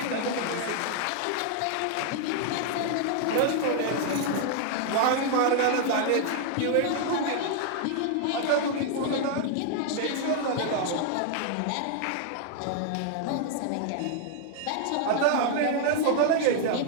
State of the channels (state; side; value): different; both; correlation 0.00